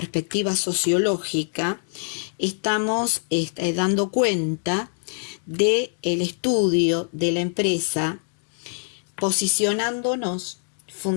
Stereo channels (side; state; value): right; silent; 62 dB below the other